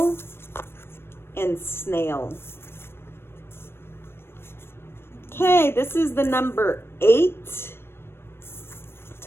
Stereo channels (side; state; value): right; late; 0.12 ms